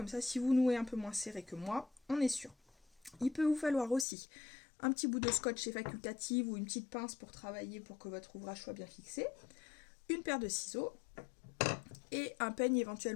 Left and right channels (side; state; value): right; drops out; at 4.0 s